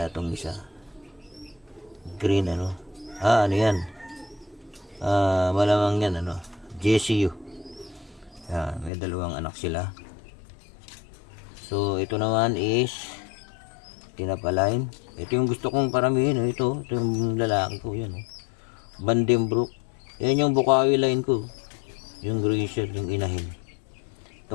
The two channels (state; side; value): drops out; right; at 8.9 s